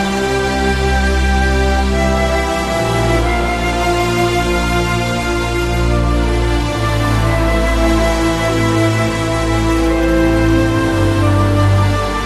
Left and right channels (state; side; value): identical; both; correlation 1.00